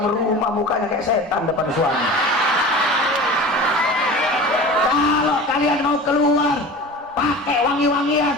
rumah mukanya kayak setan depan suami. Kalau kalian mau keluar, pakai wangi-wangian,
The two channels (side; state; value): both; normal; correlation 0.36